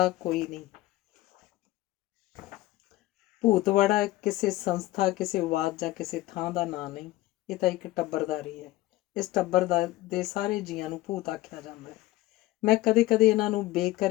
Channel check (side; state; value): right; quieter; 17.2 dB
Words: ਕੋਈ ਨਹੀਂ। ਭੂਤਵਾੜਾ ਕਿਸੇ ਸੰਸਥਾ, ਕਿਸੇ ਵਾਦ ਜਾਂ ਕਿਸੇ ਥਾਂ ਦਾ ਨਾਂ ਨਹੀਂ, ਇਹ ਤਾਂ ਇੱਕ ਟੱਬਰਦਾਰੀ ਹੈ। ਇਸ ਟੱਬਰ ਦੇ ਸਾਰੇ ਜੀਆਂ ਨੂੰ ਭੂਤ ਆਖਿਆ ਜਾਂਦਾ ਹੈ। ਮੈਂ ਕਦੇ ਕਦੇ ਇਹਨਾਂ ਨੂੰ